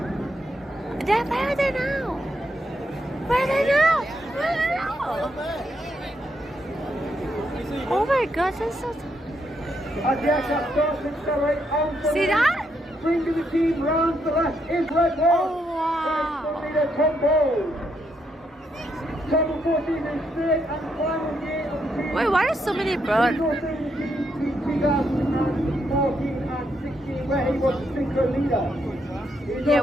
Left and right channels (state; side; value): normal; both; correlation 0.78